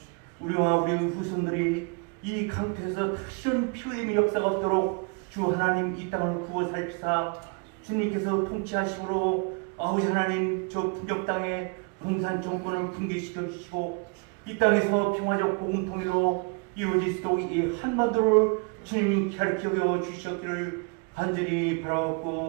우리와 우리 후손들이 이 강태에서 다시는 피 흘림의 역사가 없도록 주 하나님 이 땅을 구워 살피사 주님께서 통치하심으로 아버지 하나님 저 북녘 땅에 공산 정권을 붕괴시켜 주시고 이 땅에서 평화적 복음 통일로 이루어질 수 있도록 이 한반도를 주님이 가르쳐 주셨기를 간절히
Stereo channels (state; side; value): quieter; left; 33.5 dB